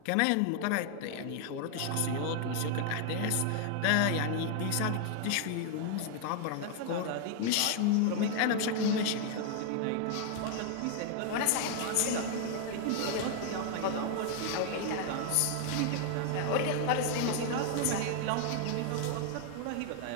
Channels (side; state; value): both; different; correlation 0.00